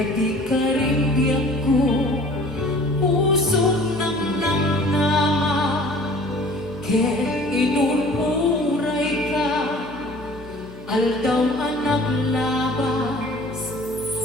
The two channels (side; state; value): left; noise; hum, 18 dB below the sound